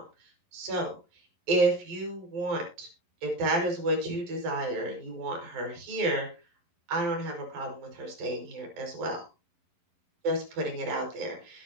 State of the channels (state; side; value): late; left; 11 ms